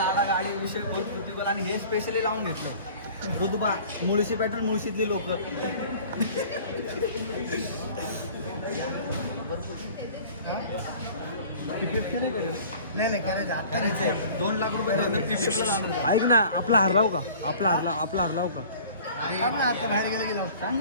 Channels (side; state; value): both; inverted; correlation -0.46